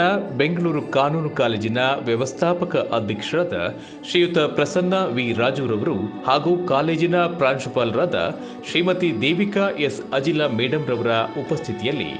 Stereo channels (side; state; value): both; identical; correlation 1.00